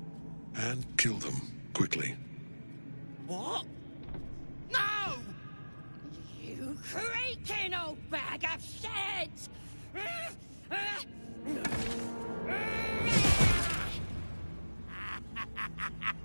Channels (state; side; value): inverted; both; correlation -1.00